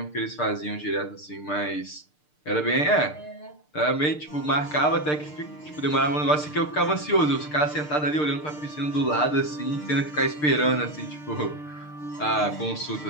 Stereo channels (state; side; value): late; right; 6.6 ms